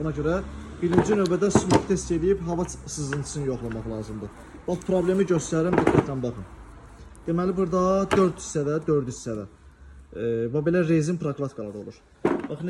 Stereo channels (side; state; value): both; identical; correlation 1.00